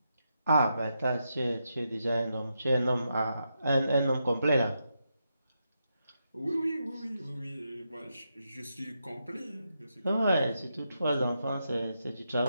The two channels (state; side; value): inverted; both; correlation -0.84